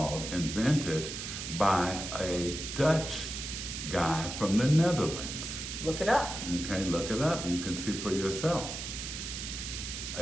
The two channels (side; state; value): right; noise; hiss, 6 dB below the sound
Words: invented by a Dutch guy from the Netherlands. Look it up. Okay, look it up. You can see for yourself.